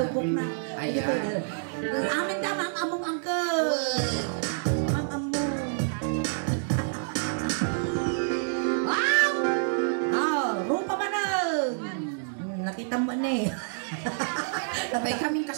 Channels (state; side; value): silent; left; digital silence